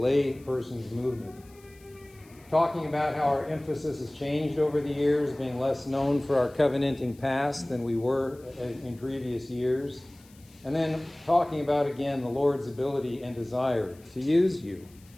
person's movement. Talking about how our emphasis has changed over the years, being less known for our covenanting past than we were in previous years. And then talking about, again, the Lord's ability and desire to use you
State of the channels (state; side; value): noise; left; hiss, 27 dB below the sound